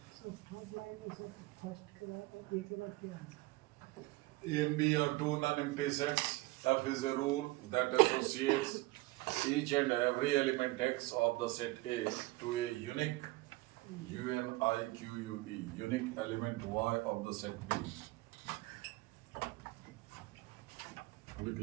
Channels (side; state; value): left; quieter; 21.3 dB